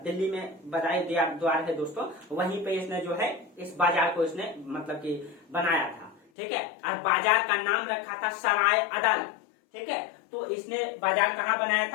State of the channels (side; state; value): right; drops out; at 6.2 s